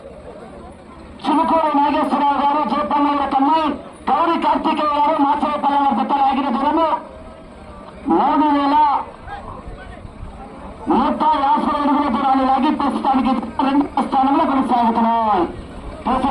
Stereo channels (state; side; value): identical; both; correlation 1.00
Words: చిలుకూరు నాగేశ్వరరావు గారు, జయపల్లెల కమ్మాయి, గౌరీ కార్తికేయ గారు, మాచరపల్లె జత లాగిన దూరము 3150 అడుగుల దూరాన్ని లాగి ప్రస్తుతానికి 2వ స్థానంలో కొనసాగుతున్నాయి.